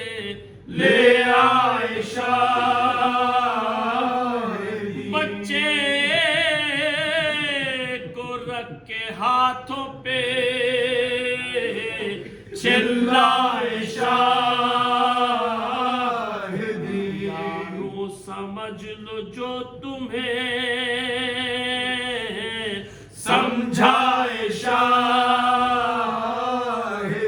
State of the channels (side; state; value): both; identical; correlation 1.00